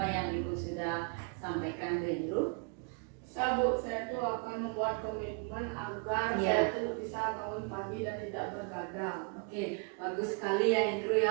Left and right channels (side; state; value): left; quieter; 34.0 dB